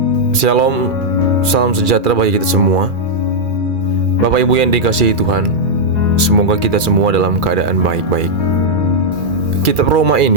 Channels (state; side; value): late; left; 2.4 ms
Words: Shalom, salam sejahtera bagi kita semua. Bapak Ibu yang dikasihi Tuhan, semoga kita semua dalam keadaan baik-baik. Kitab Roma